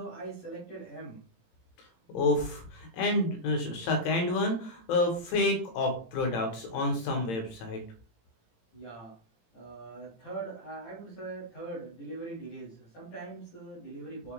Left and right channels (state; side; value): late; right; 18 ms